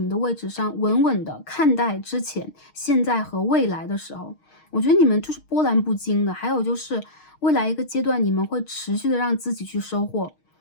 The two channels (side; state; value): right; late; 6.4 ms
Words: 的位置上，稳稳的看待之前、现在和未来的时候，我觉得你们就是波澜不惊的。还有就是未来一个阶段，你们会持续的让自己去收获，